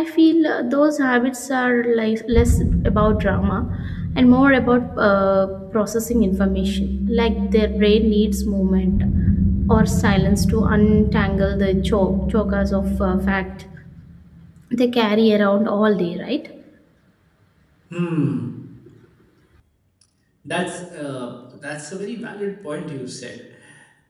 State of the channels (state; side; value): identical; both; correlation 1.00